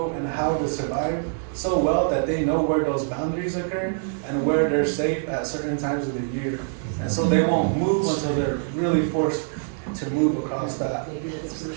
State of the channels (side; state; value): left; silent; digital silence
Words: and how to survive so well that they know where those boundaries occur and where they're safe at certain times of the year. And so they won't move until they're really forced to move across that